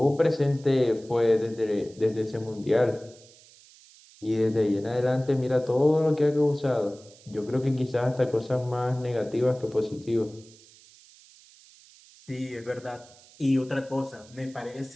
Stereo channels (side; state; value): right; noise; hiss, 25 dB below the sound